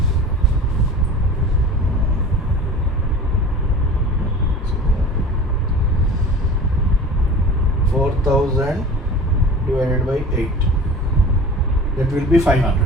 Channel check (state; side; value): normal; both; correlation 0.39